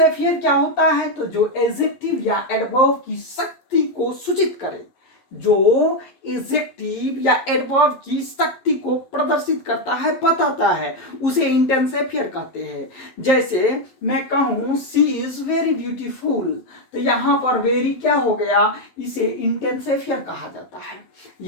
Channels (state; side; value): late; right; 11 ms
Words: क्या होता है, तो जो एडजेक्टिव या एडवर्ब की शक्ति को सूचित करे, जो एडजेक्टिव या एडवर्ब की शक्ति को प्रदर्शित करता है, बताता है, उसे इंटेंसिफायर कहते हैं। जैसे मैं कहूं सी इज वेरी ब्यूटीफुल, तो यहां पर वेरी क्या हो गया, इसे इंटेंसिफायर कहा जाता है।